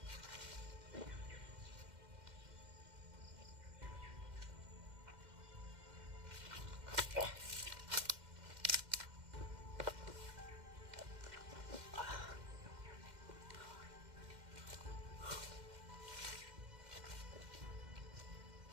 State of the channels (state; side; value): late; left; 2.1 ms